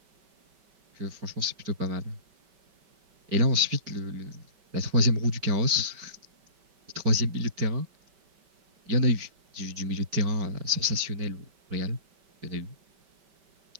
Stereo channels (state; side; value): late; left; 5.2 ms